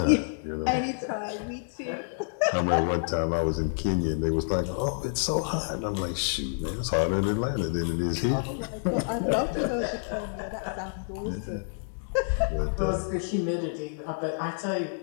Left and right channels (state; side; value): silent; right; digital silence